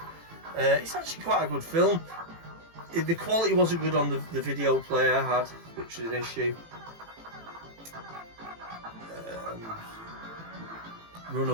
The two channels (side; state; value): left; late; 18 ms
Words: It's actually quite a good film. The quality wasn't good on the video player I had, which was an issue.